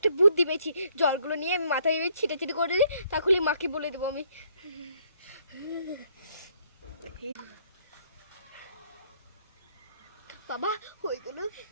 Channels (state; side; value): inverted; both; correlation -0.66